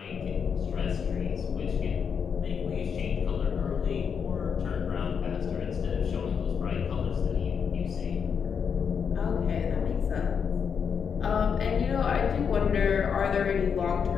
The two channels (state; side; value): quieter; right; 6.8 dB